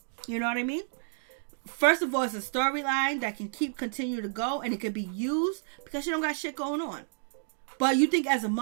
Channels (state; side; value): silent; left; digital silence